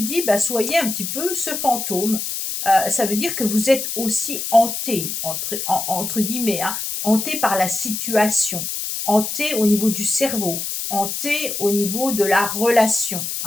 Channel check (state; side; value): noise; left; hiss, 4 dB below the sound